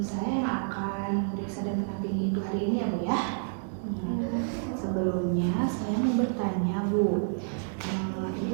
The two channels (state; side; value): silent; left; digital silence